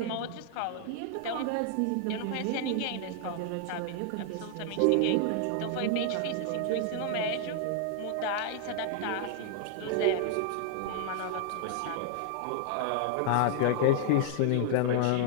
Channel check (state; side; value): different; both; correlation -0.01